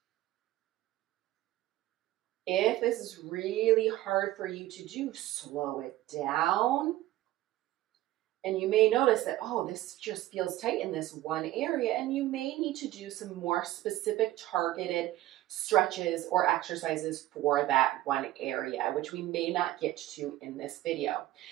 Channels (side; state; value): left; quieter; 15.5 dB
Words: If this is really hard for you to do, slow it down. And you may notice that, oh, this just feels tight in this one area, and you may need to do some more specific targeted stretches or exercises for that one area, which we may not get to in this video.